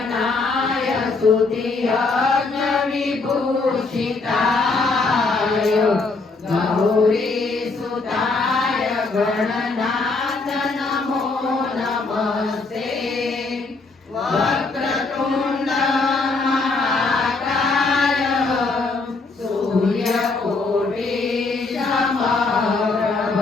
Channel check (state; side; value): quieter; right; 3.8 dB